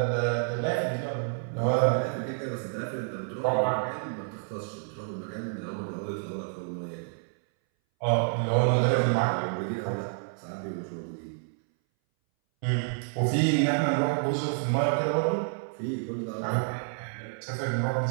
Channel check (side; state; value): left; silent; 59 dB below the other